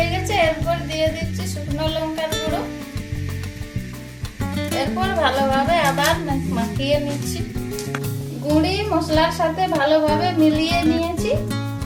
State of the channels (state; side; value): identical; both; correlation 1.00